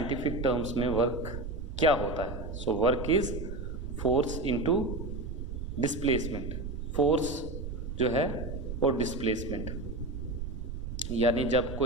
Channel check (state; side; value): noise; right; rumble, 6 dB below the sound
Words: टर्म्स में वर्क क्या होता है। So work is force into displacement. Force जो है और डिस्प्लेसमेंट, यानी जब